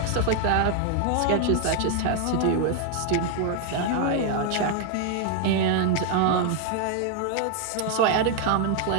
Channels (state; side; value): different; both; correlation 0.00